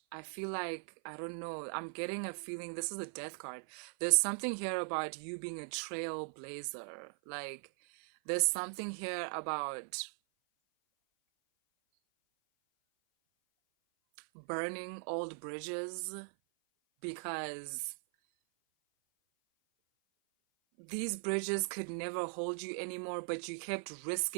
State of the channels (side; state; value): left; silent; 52 dB below the other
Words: I feel like, I don't know, I'm getting a feeling, this is a death card. There's something here about you being a trailblazer. Like, there's something here about burning old bridges, because these bridges could never hold you anymore, but you kept